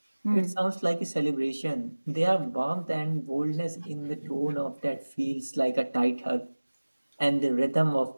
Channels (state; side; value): inverted; both; correlation -1.00